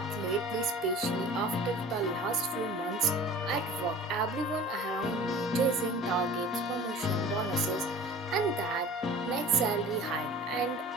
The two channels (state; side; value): normal; both; correlation 0.42